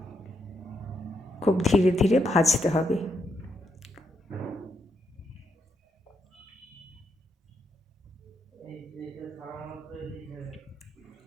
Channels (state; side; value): normal; both; correlation 0.80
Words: খুব ধীরে ধীরে ভাজতে হবে।